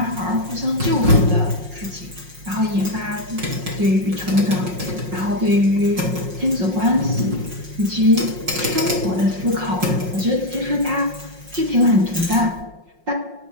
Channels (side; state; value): left; late; 5.5 ms